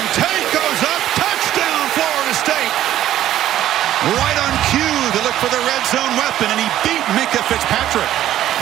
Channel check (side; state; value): left; quieter; 12.6 dB